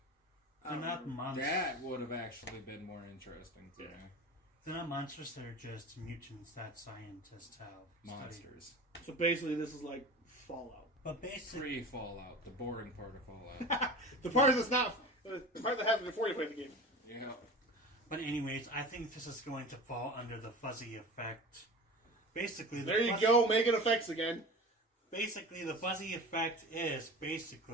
They're not monsters. That would have actually been more interesting to me. They're not monsters, they're just mutants that scientists have Monsters. So basically, this is like Fallout. But basically, Pre-Fallout, the boring part of Fallout. The part that's not the part that happens before you play the game. Yeah. but anyways, I think this is going to fall under the fuzzy effect. Basically, There you go, making effects again. Basically, the fuzzy effect is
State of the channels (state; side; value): normal; both; correlation 0.35